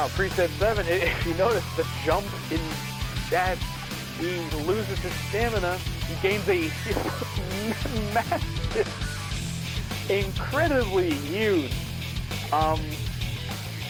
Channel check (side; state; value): both; identical; correlation 1.00